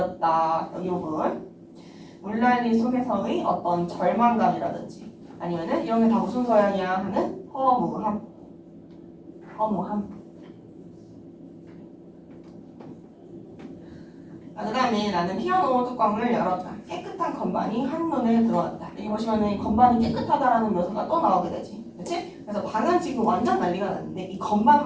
여기 부분. 물난리 속에서의 어떤 절망감이라든지 아니면은 이런 게 다 무슨 소양이야 하는 허무함. 허무함. 그 다음에 나는 피아노 뚜껑을 열었다. 깨끗한 건반이 한눈에 들어왔다. 여기 보시면은 건반이 깨끗하다라는 묘사가 또 나오게 되지. 그치? 그래서 방은 지금 완전 난리가 났는데 이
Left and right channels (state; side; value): identical; both; correlation 1.00